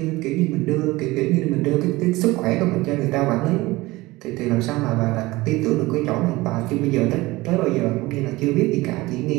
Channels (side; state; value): left; quieter; 20.3 dB